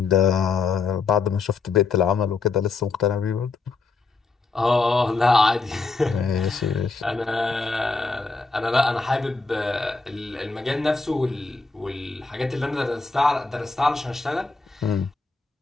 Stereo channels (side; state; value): right; quieter; 4.1 dB